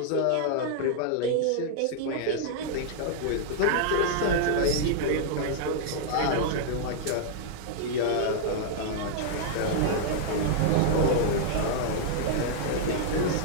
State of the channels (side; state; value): both; different; correlation -0.01